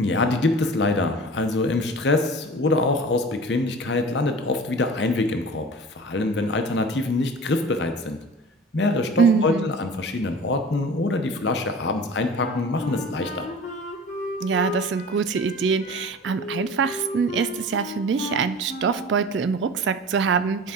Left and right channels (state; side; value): normal; both; correlation 0.39